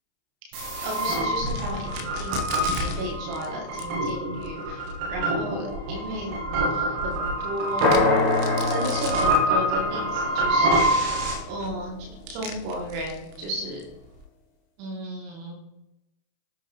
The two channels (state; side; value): late; left; 31 ms